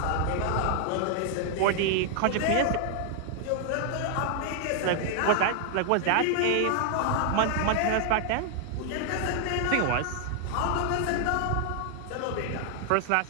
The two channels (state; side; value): different; both; correlation 0.00